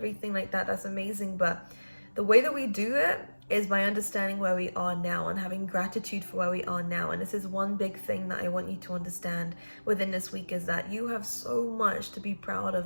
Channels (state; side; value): inverted; both; correlation -1.00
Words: like that, that's amazing. But the way that we do it is by understanding where we are now and having gratitude for where we are now. And this is one big thing that I want you to understand within this week, is that you have so much to be proud